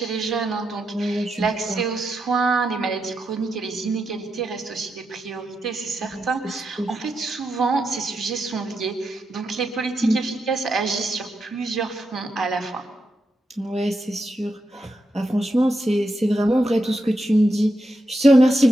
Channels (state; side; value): normal; both; correlation 0.85